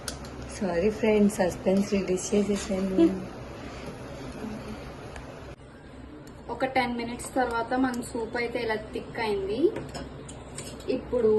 Sorry friends, suspense release చేసేసాను. ఒక 10 minutes తర్వాత మన సూప్ అయితే ఇలా థిక్ అయింది. ఇప్పుడు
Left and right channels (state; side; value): identical; both; correlation 1.00